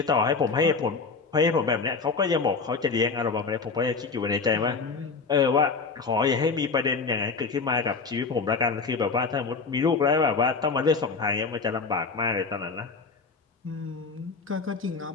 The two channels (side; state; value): right; quieter; 4.6 dB